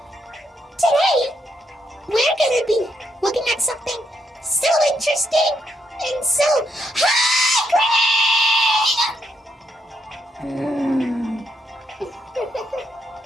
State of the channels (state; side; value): normal; both; correlation 0.77